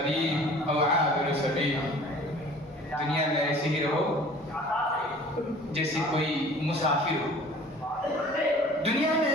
او عابر سبیل، دنیا میں ایسے ہی رہو جیسے کوئی مسافر ہو، دنیا میں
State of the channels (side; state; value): both; normal; correlation 0.48